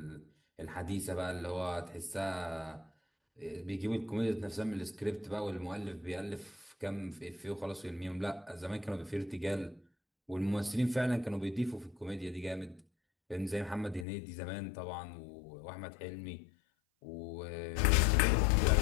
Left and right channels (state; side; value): drops out; right; at 14.1 s